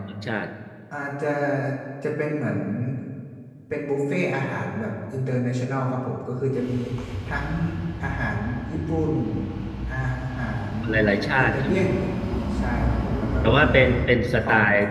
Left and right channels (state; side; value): identical; both; correlation 1.00